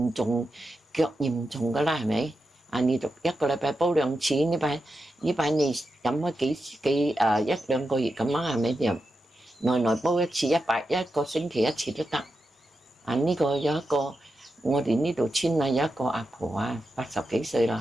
重腳嚴重㗎啦，係咪？你就一個禮拜煲2次，呢排你飲開一兩個月咁啊，係咪？就耐煲一次，1個星期1次都得。呢個有一個我哋呢度村有一個阿婆啊，80幾歲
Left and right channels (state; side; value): normal; both; correlation 0.89